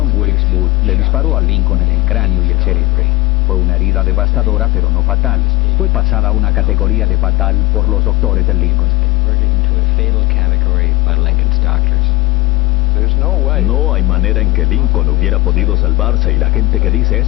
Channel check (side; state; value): right; quieter; 18.9 dB